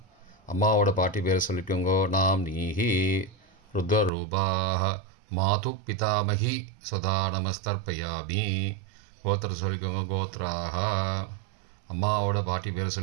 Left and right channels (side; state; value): left; drops out; at 4.1 s